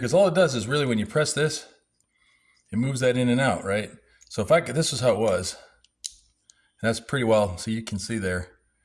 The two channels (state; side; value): identical; both; correlation 1.00